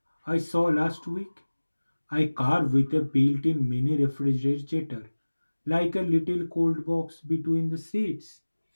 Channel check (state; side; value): inverted; both; correlation -1.00